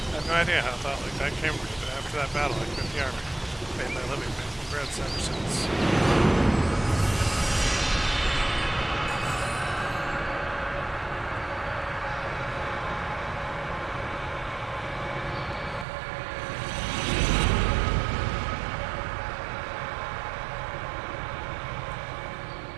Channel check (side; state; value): left; drops out; at 15.9 s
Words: I have no idea how a thought like that came to me, but after that battle, I quit the army. I've made my living making breads ever since.